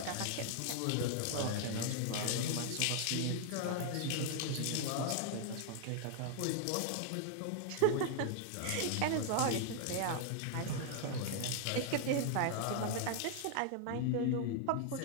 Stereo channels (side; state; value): both; different; correlation 0.00